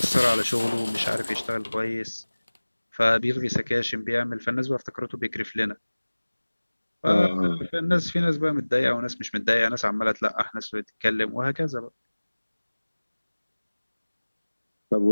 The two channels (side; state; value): both; inverted; correlation -1.00